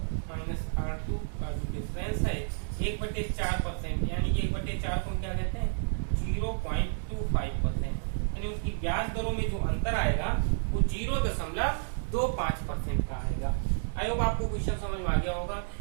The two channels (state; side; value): silent; left; 57 dB below the other